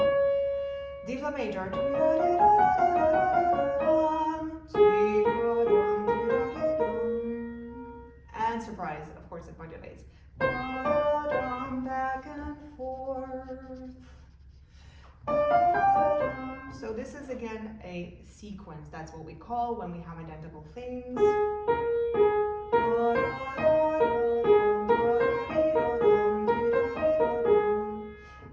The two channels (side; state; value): both; identical; correlation 1.00